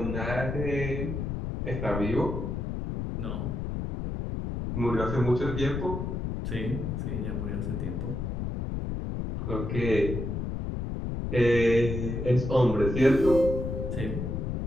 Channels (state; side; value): noise; left; rumble, 3 dB below the sound